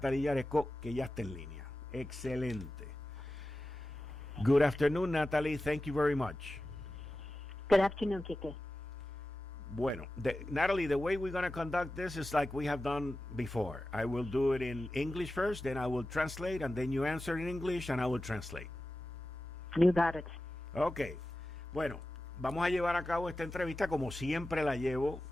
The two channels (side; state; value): both; normal; correlation 0.94